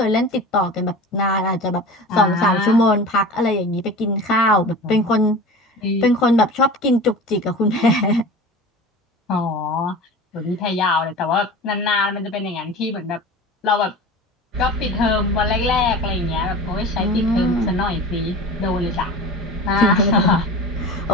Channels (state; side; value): normal; both; correlation 0.35